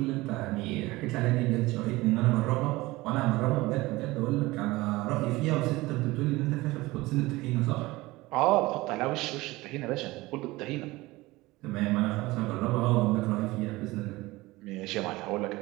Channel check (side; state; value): left; quieter; 20.2 dB